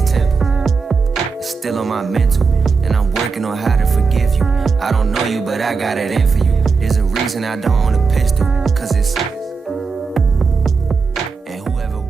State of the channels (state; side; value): quieter; left; 4.9 dB